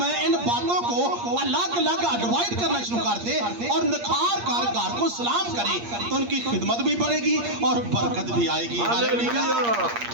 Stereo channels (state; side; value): late; left; 8.5 ms